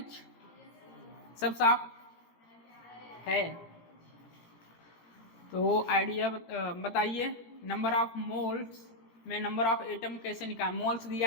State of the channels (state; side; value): late; right; 18 ms